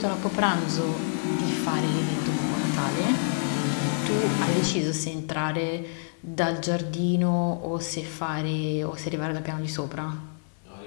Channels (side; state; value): right; silent; digital silence